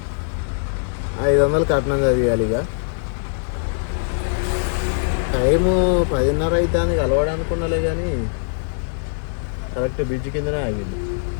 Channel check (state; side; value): silent; right; digital silence